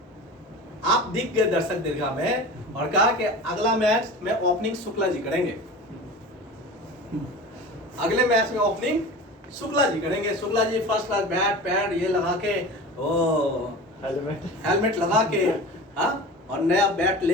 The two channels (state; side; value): normal; both; correlation 0.34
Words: आप दिख गए दर्शक दीर्घा में, और कहा कि अगला मैच में ओपनिंग शुक्ला जी करेंगे, अगले मैच में ओपनिंग शुक्ला जी करेंगे। Shukla ji first class bat pad ये लगा के, ओ हेलमेट लगा के, हाँ, और नया बैट